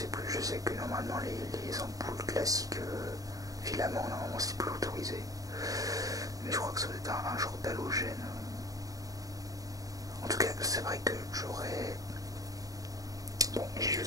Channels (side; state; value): left; late; 0.17 ms